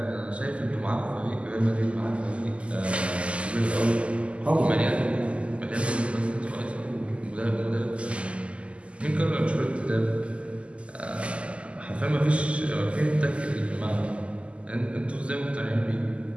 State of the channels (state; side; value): late; left; 0.057 ms